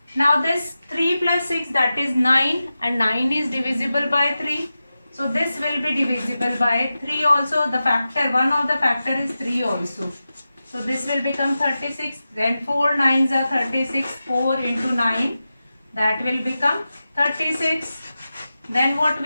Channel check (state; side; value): inverted; both; correlation -0.93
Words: Now this 3 plus 6, that is 9, and 9 is divisible by 3. So this will be divisible by 3 also. The factor, one of the factor is 3 also. So this will become 36. Then 4 9s are 36. 4 into 9, that will become 36. Then what